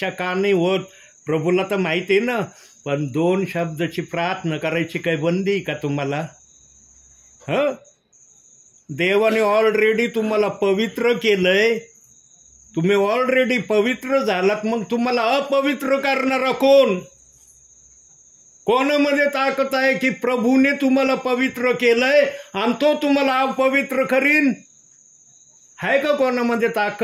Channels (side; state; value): both; identical; correlation 1.00